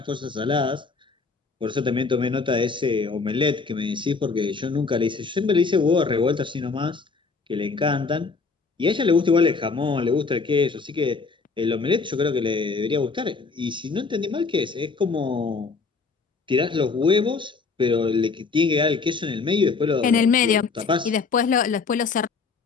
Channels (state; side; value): quieter; right; 4.6 dB